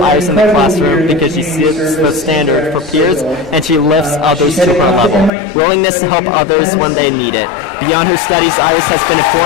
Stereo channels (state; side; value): drops out; right; at 5.3 s